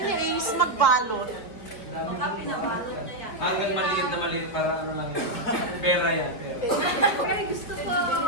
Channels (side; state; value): right; late; 4.4 ms